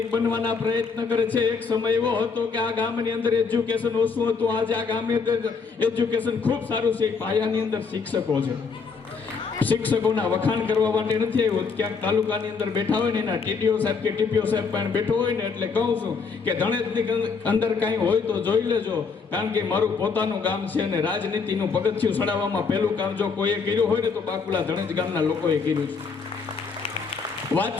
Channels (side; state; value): right; quieter; 5.2 dB